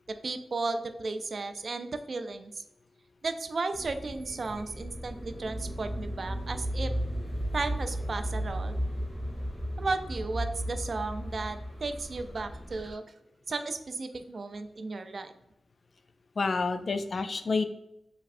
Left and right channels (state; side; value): normal; both; correlation 0.92